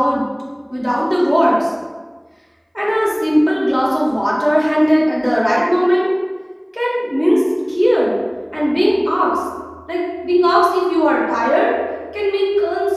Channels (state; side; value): identical; both; correlation 1.00